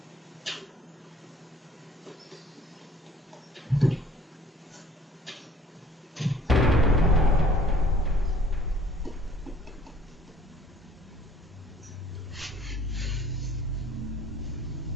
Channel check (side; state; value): both; normal; correlation 0.54